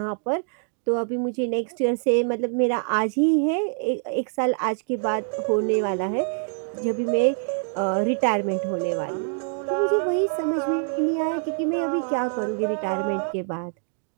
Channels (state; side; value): silent; left; 57 dB below the other